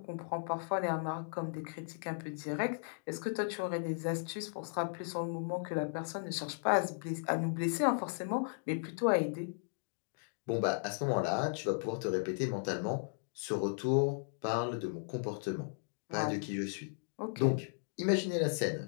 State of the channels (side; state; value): right; silent; digital silence